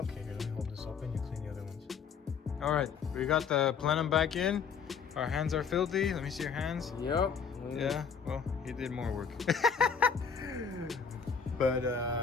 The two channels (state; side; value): quieter; right; 6.3 dB